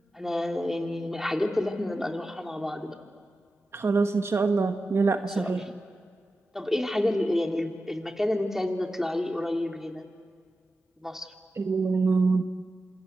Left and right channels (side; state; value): both; normal; correlation 0.92